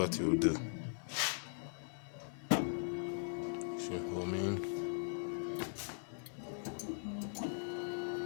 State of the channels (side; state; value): right; silent; 51 dB below the other